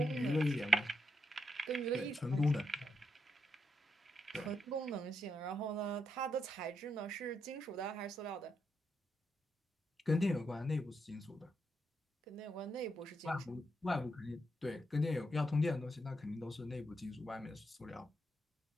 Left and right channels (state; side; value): normal; both; correlation 0.81